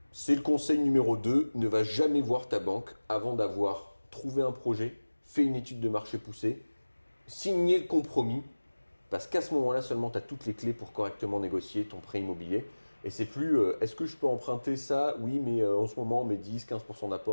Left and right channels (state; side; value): inverted; both; correlation -1.00